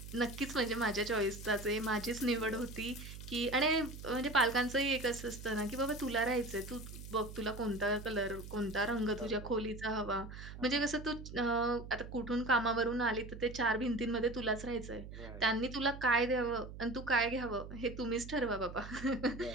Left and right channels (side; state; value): right; noise; hum, 12 dB below the sound